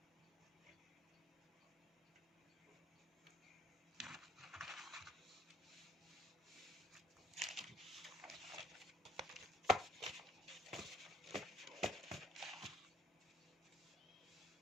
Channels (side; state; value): both; normal; correlation 0.58